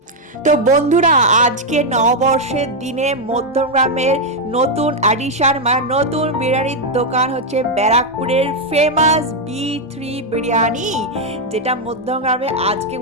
তো বন্ধুরা, আজকে নববর্ষের দিনে মধ্যমগ্রামের নতুন অ্যাডিশন মানে নতুন বিরিয়ানির দোকান হচ্ছে ব্যারাকপুরের ফেমাস B3 বিরিয়ানি, যেটা মধ্যমগ্রামে আজকে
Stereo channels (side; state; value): both; normal; correlation 0.01